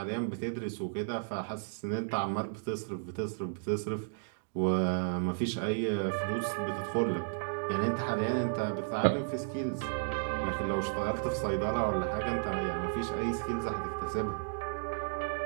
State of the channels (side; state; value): left; silent; digital silence